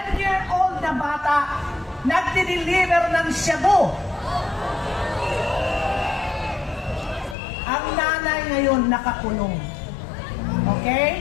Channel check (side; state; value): right; drops out; at 7.4 s